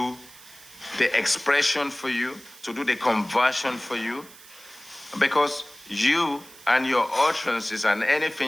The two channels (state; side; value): noise; right; hiss, 21 dB below the sound